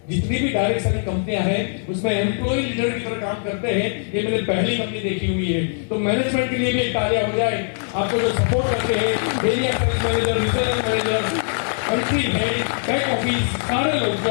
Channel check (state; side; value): silent; right; 62 dB below the other